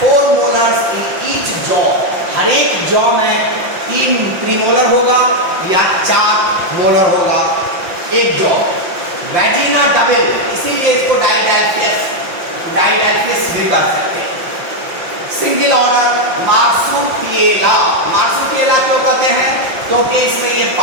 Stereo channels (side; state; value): left; late; 5.6 ms